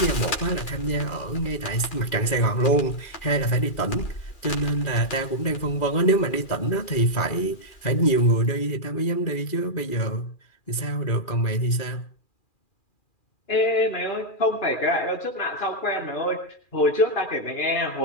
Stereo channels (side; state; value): right; late; 2.4 ms